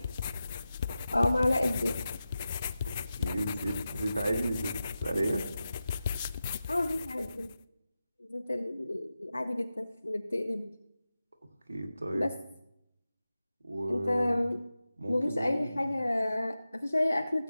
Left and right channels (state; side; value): inverted; both; correlation -0.93